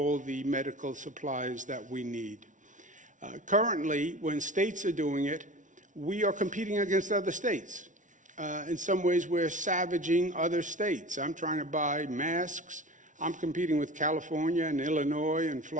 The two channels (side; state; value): left; late; 0.37 ms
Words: the medical supplies that we need. Currently, when states are doing it, we are competing against other states. In some ways, we're savaging other states. I'm trying to buy masks. I'm competing with California and Illinois and